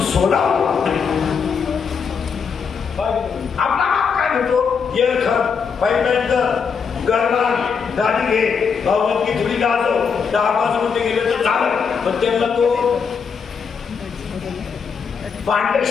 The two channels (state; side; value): quieter; right; 6.1 dB